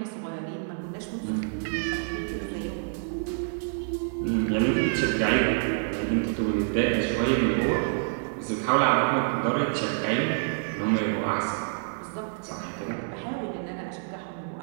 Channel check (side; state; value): left; silent; 58 dB below the other